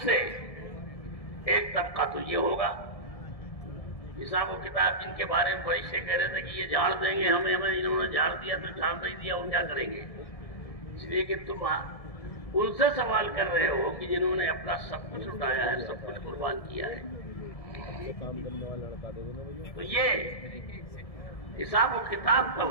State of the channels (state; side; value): late; right; 1.7 ms